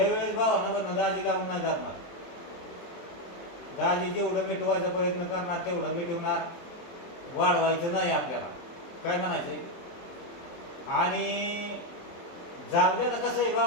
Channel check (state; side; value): late; right; 23 ms